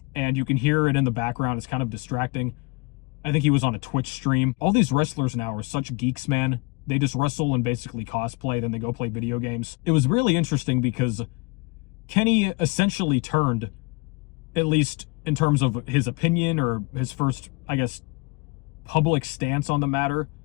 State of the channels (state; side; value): quieter; right; 26.7 dB